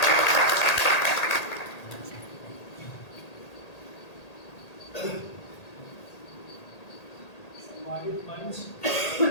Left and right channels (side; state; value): right; late; 1.8 ms